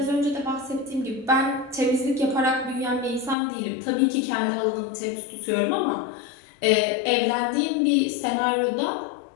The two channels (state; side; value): drops out; right; at 3.4 s